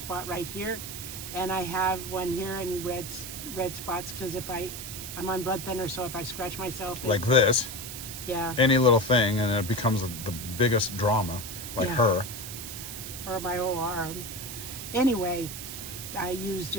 right here, and I have one here in red spots because I'm on blood thinner, so if I scratch myself, like this. yeah, Any little thing, and it becomes the biggest drama. Like Yeah. her. or my whole arm. Anyway, I use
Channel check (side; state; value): right; noise; hiss, 8 dB below the sound